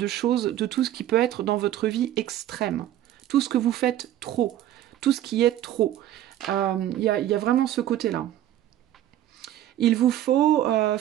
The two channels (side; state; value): left; quieter; 12.5 dB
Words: choses, de tout ce qui peut être dans votre vie extrême. Tout ce que vous faites trop. Tout ce qui est trop. Il y a vraiment ce côté-là. Il vous faut